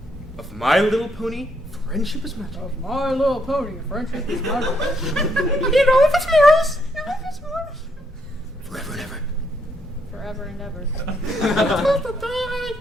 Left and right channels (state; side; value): normal; both; correlation 0.74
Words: of My Little Pony, Friendship is Magic. of My Little Pony. Friendship is magic. You know if it's morals. Forever and ever. Forever and ever.